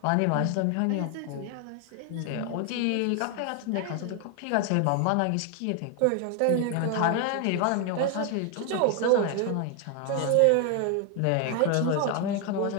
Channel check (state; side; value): different; both; correlation 0.01